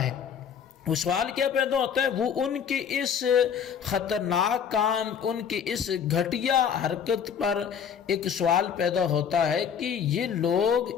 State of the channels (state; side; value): quieter; right; 7.6 dB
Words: ہے۔ وہ سوال کیا پیدا ہوتا ہے؟ وہ ان کے اس خطرناک کام، ان کے اس گھٹیا حرکت پر ایک سوال پیدا ہوتا ہے کہ یہ لوگ